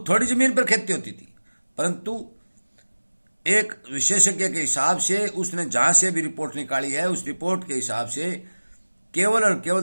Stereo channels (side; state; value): both; inverted; correlation -1.00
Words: थोड़ी जमीन पर खेती होती थी, परंतु एक विशेषज्ञ के हिसाब से उसने जहां से भी रिपोर्ट निकाली है, उस रिपोर्ट के हिसाब से केवल और